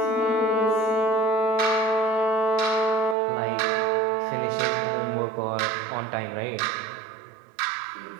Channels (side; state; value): left; drops out; at 3.2 s